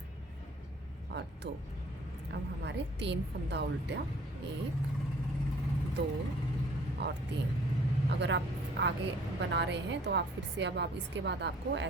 और 2। अब हमारे 3 फंदा उल्टा, 1 2 और 3। अगर आप आगे बना रहे हैं तो आप फिर से अब इसके बाद आपको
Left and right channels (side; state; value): both; normal; correlation 0.55